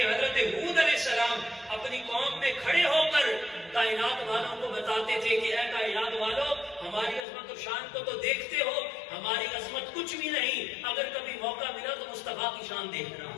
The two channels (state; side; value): drops out; right; at 7.2 s